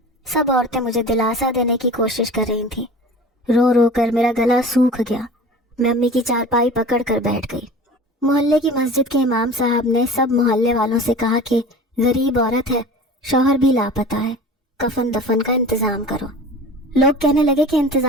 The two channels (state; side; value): normal; both; correlation 0.39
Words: سب عورتیں مجھے دلاسا دینے کی کوشش کر رہی تھیں۔ رو کر میرا گلا سوکھ گیا۔ میں امی کی چارپائی پکڑ کر بیٹھ گئی۔ محلے کی مسجد کے امام صاحب نے سب محلے والوں سے کہا کہ غریب عورت ہے، شوہر بھی لاپتہ ہے، کفن دفن کا انتظام کرو۔ لوگ کہنے لگے کہ